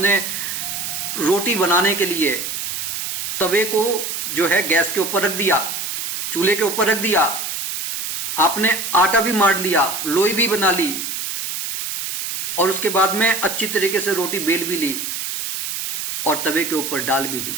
रोटी बनाने के लिए तवे को जो है गैस के ऊपर रख दिया, चूल्हे के ऊपर रख दिया, आपने आटा भी मार लिया, लोई भी बना ली, और उसके बाद में अच्छी तरीके से रोटी बेल भी ली और तवे के ऊपर डाल भी दी,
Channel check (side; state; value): right; noise; hiss, 4 dB below the sound